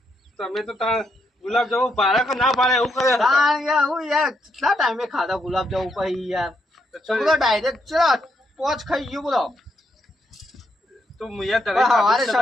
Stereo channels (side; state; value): both; normal; correlation 0.78